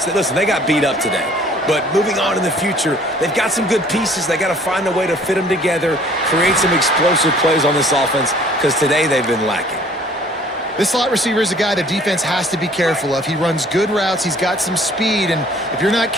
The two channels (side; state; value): both; normal; correlation 0.55